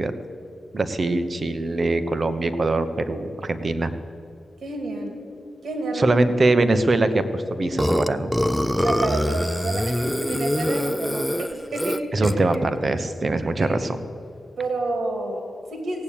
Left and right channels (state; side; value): normal; both; correlation 0.93